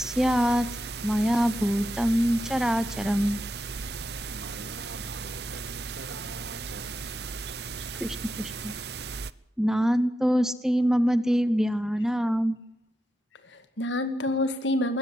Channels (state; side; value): normal; both; correlation 0.87